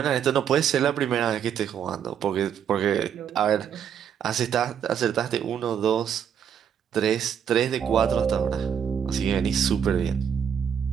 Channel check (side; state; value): left; quieter; 8.3 dB